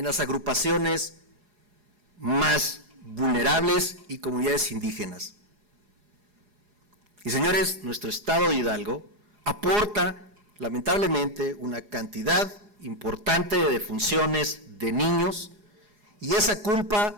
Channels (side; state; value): left; late; 4.8 ms